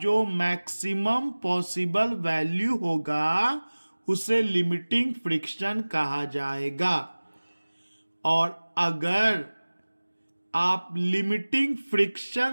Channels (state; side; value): inverted; both; correlation -1.00